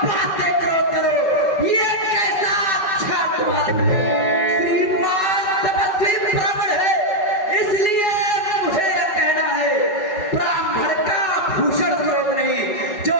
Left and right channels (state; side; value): late; right; 5.2 ms